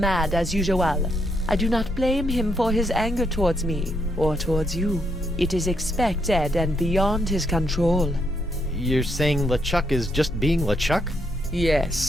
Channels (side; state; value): both; normal; correlation 0.77